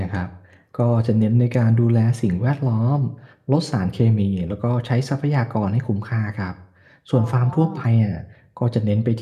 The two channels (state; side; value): identical; both; correlation 1.00